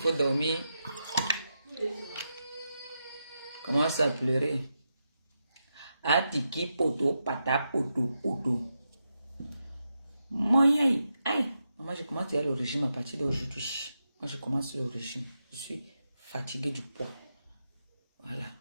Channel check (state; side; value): inverted; both; correlation -0.86